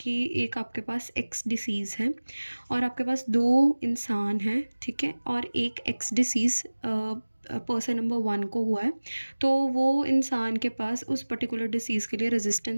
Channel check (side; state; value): both; inverted; correlation -1.00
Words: एक आपके पास X disease है और आपके पास दो इंसान हैं, ठीक है, और एक X डिसीज़ पर्सन नंबर 1 को हुआ है, तो वो इंसान के पास उस पर्टिकुलर डिसीज़ के लिए